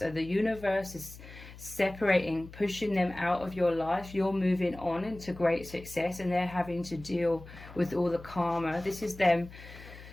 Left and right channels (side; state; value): left; noise; hum, 17 dB below the sound